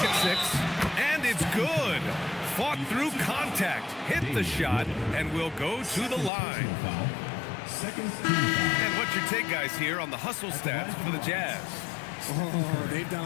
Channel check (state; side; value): drops out; right; at 6.3 s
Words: at 6. And it's good. Fought through contact. Hit the shot and will go to the line. And what's your take, guys, here on the hustle stats for the Jazz? Oh, they've